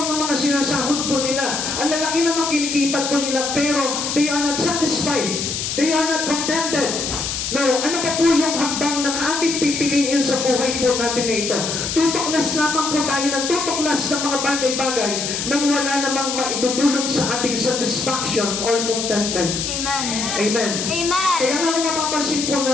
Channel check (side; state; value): left; noise; hiss, 3 dB below the sound